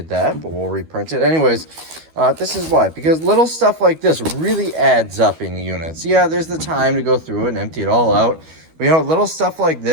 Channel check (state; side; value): late; left; 12 ms